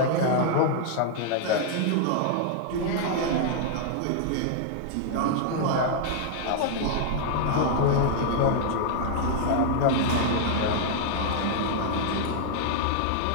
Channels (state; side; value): different; both; correlation -0.01